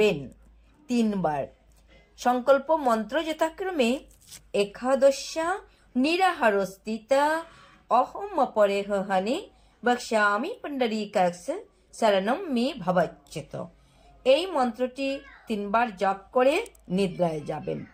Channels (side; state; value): both; identical; correlation 1.00